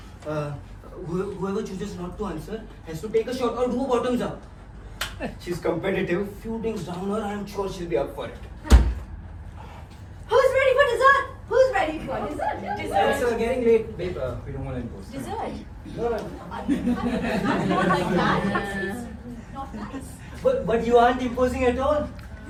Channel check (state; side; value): identical; both; correlation 1.00